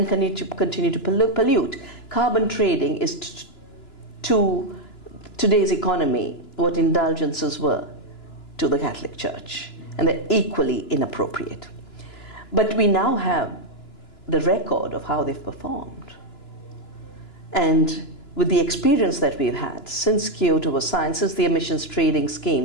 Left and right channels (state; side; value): late; right; 2.9 ms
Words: continue to pollute. Carbon trading is to today's economy what indulgences were to the Catholic Church, and they're equally inappropriate. But we now have the record of how they've performed. And with the experience that we've had since Kyoto was signed, since the emissions trading